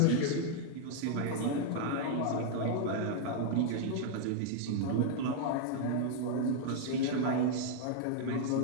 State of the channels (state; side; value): different; both; correlation 0.00